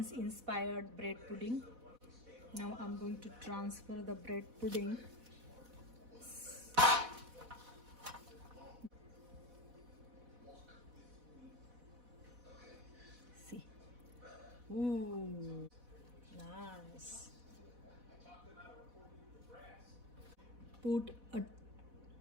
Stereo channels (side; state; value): left; late; 4.1 ms